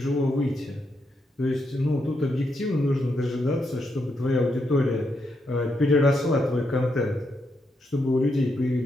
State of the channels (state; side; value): normal; both; correlation 0.81